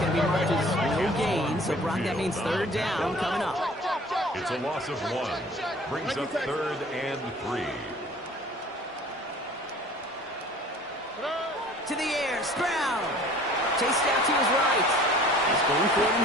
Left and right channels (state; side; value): normal; both; correlation 0.49